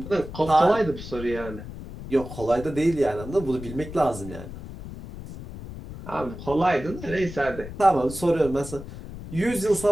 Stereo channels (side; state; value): left; noise; rumble, 12 dB below the sound